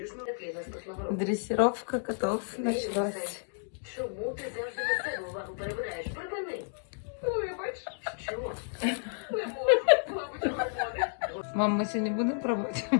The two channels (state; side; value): silent; right; digital silence